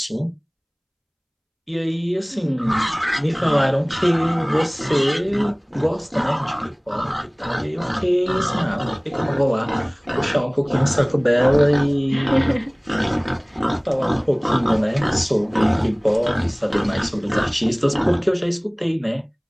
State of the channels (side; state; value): both; identical; correlation 1.00